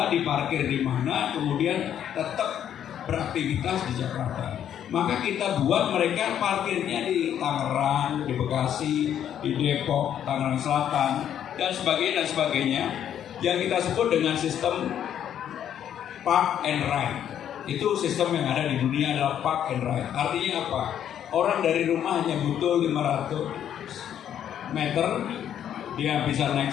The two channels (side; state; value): right; quieter; 9.9 dB